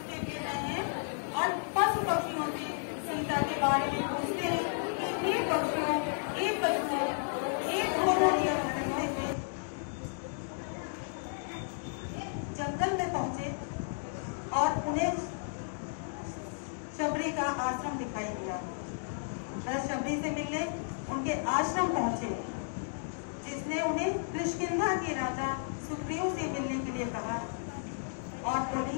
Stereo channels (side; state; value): right; silent; digital silence